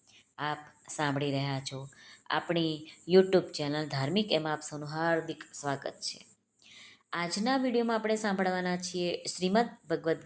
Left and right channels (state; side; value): identical; both; correlation 1.00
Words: આપ સાંભળી રહ્યા છો આપણી યુટ્યુબ ચેનલ ધાર્મિક, એમાં આપ સૌનું હાર્દિક સ્વાગત છે. આજના વિડીયોમાં આપણે સાંભળવાના છીએ શ્રીમદ ભગવદ્